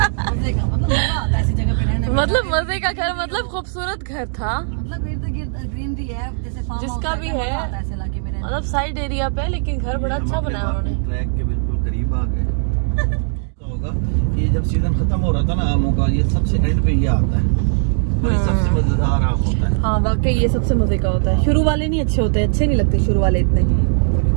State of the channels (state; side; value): silent; left; digital silence